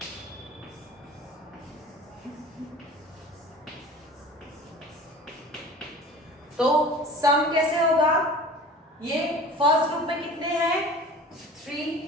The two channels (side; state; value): both; normal; correlation 0.41